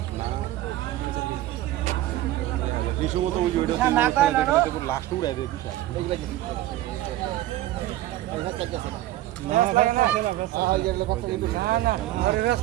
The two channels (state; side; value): quieter; left; 15.0 dB